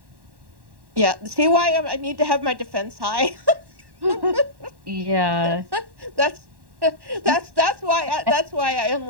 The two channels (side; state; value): left; late; 1.1 ms